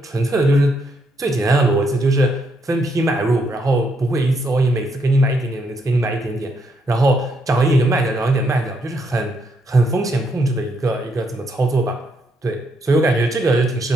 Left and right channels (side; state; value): both; normal; correlation 0.76